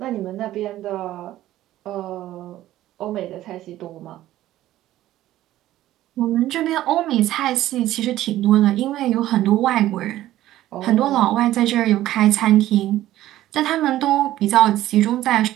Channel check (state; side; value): quieter; left; 14.3 dB